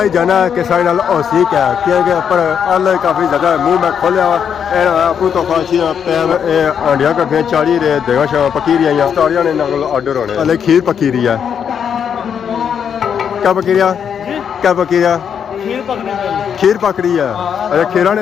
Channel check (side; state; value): right; quieter; 7.8 dB